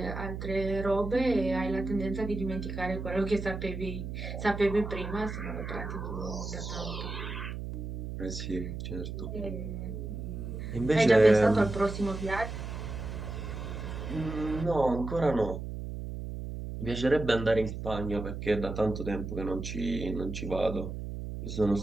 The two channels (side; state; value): right; noise; hum, 6 dB below the sound